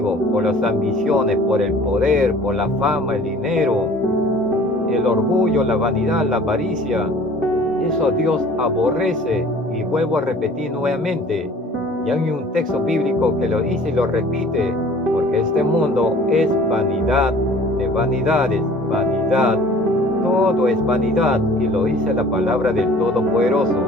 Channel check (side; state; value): both; normal; correlation 0.49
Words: por las ambiciones, por el poder, por la fama, el dinero, el orgullo, la vanidad, la avaricia. Eso Dios aborrece, y vuelvo a repetir nuevamente. Y hay un texto bíblico que lo dice y lo repite, porque este mundo es vanidad de vanidades, vanidad. Todo es vanidad, y lo dice la palabra del Todopoderoso,